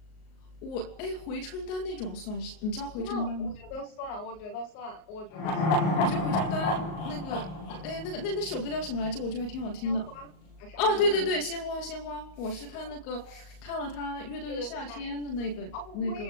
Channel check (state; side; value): late; right; 38 ms